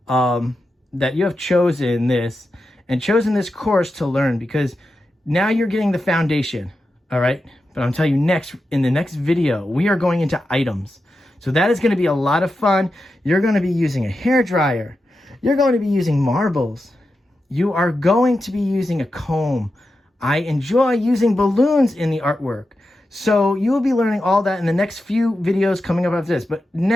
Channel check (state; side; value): normal; both; correlation 0.90